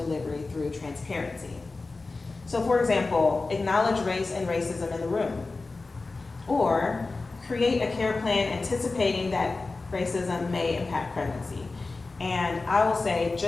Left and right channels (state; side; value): quieter; right; 3.6 dB